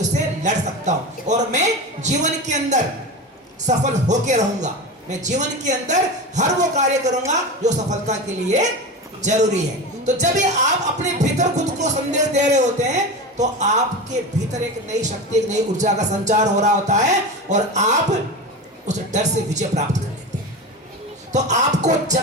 से लड़ सकता हूं और मैं जीवन के अंदर सफल होके रहूंगा। मैं जीवन के अंदर हर वो कार्य करूंगा जो सफलता के लिए जरूरी है। तो जब भी आप अपने भीतर खुद को संदेश दे रहे होते हैं तो आपके भीतर एक नई शक्ति, एक नई ऊर्जा का संचार हो रहा होता है और आप उस डर से विजय प्राप्त कर लेते हैं। तो आपको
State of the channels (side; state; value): both; normal; correlation 0.25